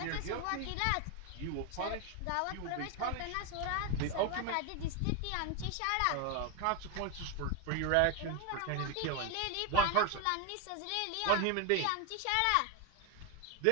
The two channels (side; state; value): both; different; correlation 0.02